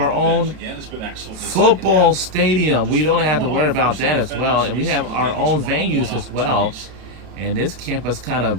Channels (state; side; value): late; left; 32 ms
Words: own football stadium. We don't have to worry about that as well. And we have our own venues as well. And this campus kind